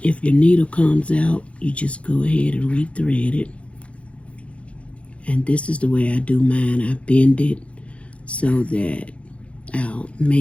needle comes out, you just go ahead and rethread it. And this is the way I do mine. I bend it so that I'll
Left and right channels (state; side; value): late; right; 0.062 ms